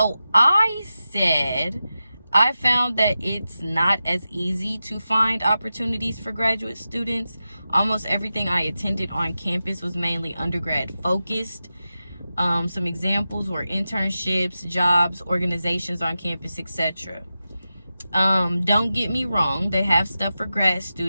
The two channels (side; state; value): both; inverted; correlation -0.92